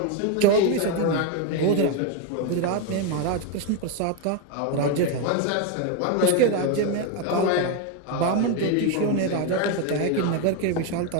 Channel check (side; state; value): both; different; correlation 0.02